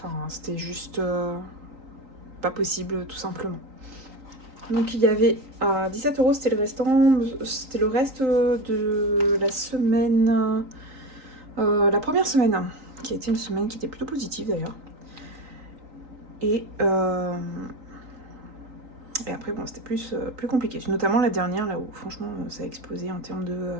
c'était juste pas possible, tout simplement. Donc il y avait 17 €, c'était le restant, c'était le reste de la semaine, la première semaine, qui a été une semaine qui était plutôt positive d'ailleurs. Et après, bon, c'était plus compliqué. Notamment la dernière, là où franchement ça a explosé en termes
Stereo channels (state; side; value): late; left; 3.9 ms